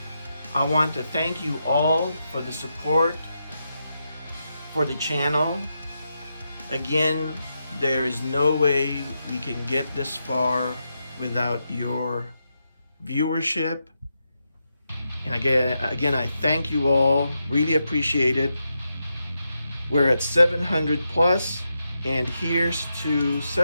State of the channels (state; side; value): inverted; both; correlation -0.85